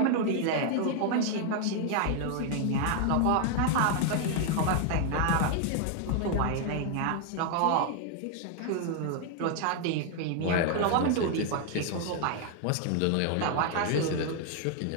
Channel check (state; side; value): different; both; correlation 0.00